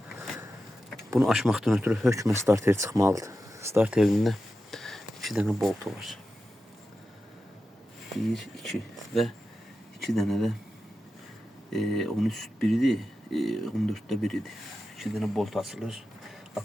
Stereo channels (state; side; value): normal; both; correlation 0.92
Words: Bunu açmaqdan ötürü hökmə starter çıxmalıdır. Starterində 2 dənə boltu var. 1, 2 və 2 dənə də 13-1 idi, 14-də 1 idi. 2 dənə bolt açılır.